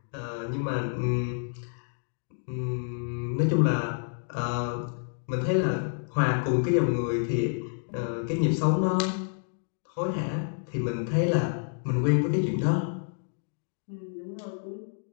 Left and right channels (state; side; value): silent; right; digital silence